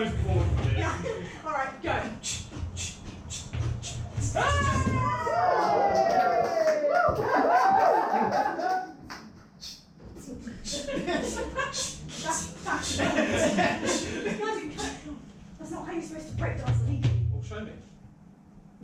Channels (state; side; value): identical; both; correlation 1.00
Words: bored of it. Yeah. Alright, go. That's not how you're supposed to breakdance legally. Well, show me.